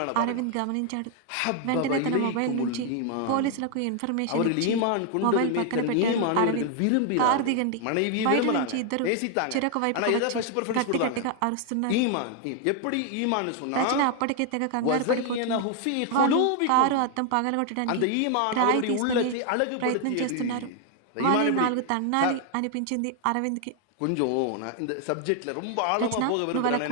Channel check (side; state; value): both; different; correlation 0.00